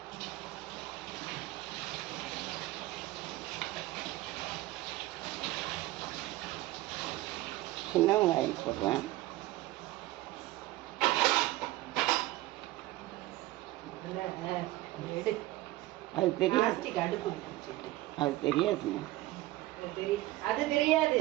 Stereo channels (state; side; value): quieter; left; 17.4 dB